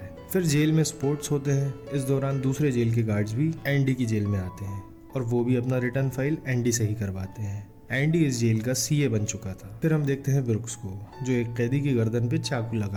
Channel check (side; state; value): both; identical; correlation 1.00